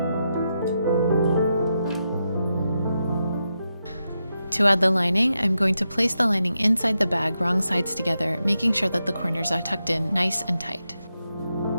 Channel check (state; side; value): inverted; both; correlation -0.86